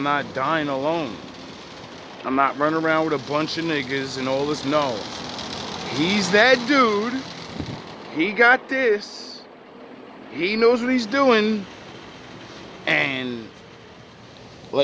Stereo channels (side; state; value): both; identical; correlation 1.00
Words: not dying alone. I'm not running around with a bunch of niggas and all this. No. He's that dude. He got this. He knows what he's doing. And